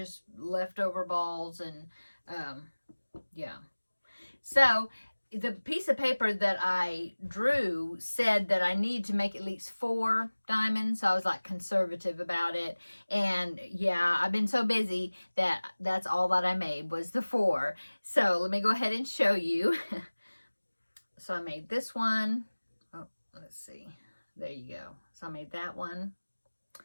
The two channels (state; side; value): inverted; both; correlation -1.00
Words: leftover balls and yeah. So the piece of paper that I drew said that I need to make at least 4 diamonds. So I was like conservative about it. And yeah, I've been so busy that that's all that I made was the 4. So let me go ahead and show you. So I made this one. Oh, let's see. There you go. So I made that one.